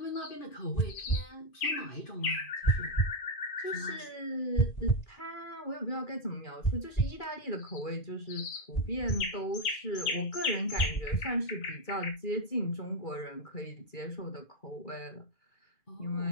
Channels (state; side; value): late; right; 2.4 ms